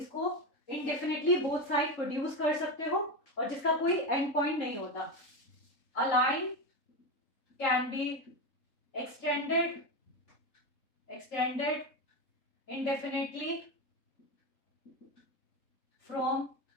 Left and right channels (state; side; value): late; right; 3.7 ms